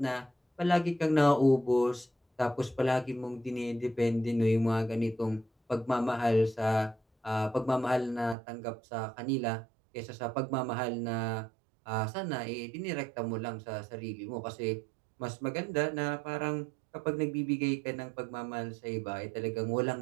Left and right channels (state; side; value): drops out; left; at 8.3 s